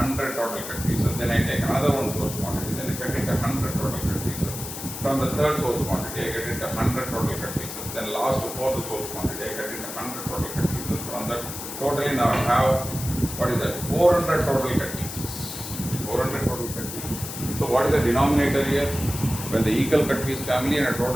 total cut pieces. Then I take another one source quantity, then I cut into 100 total cut pieces. From the third source quantity, I get into 100 total cut pieces. Then last fourth source quantity, I get into 100 total cut pieces. From that, totally now I have 400 total cut pieces. 400 total cut pieces. So what is the denominator here? When the equal cut piece family and the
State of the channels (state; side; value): noise; left; hiss, 8 dB below the sound